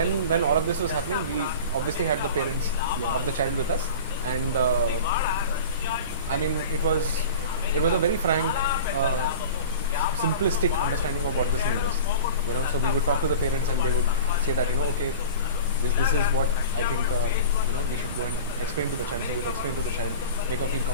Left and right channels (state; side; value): inverted; both; correlation -0.35